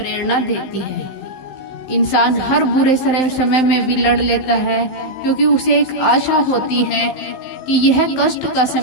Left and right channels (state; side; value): late; right; 15 ms